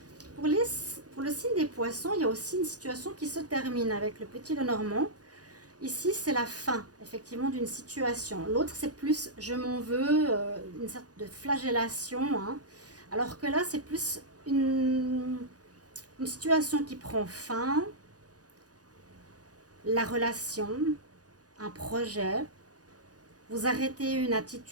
Pour le signe des poissons, il y a aussi une situation qui se termine avec le Petit Lenormand. Ici, c'est la fin, effectivement, d'une situation. L'autre, c'est plus je m'en veux, une sorte de flagellation. Hein. Alors que là, c'est plus une situation qui prend fin, la relation, un projet, vous arrêtez une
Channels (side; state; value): left; late; 0.68 ms